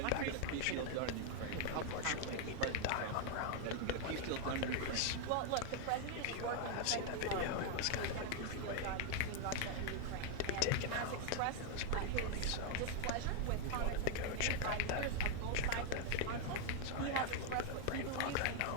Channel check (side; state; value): both; different; correlation 0.00